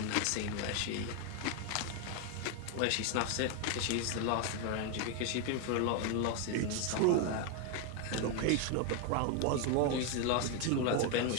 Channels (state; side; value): different; both; correlation 0.01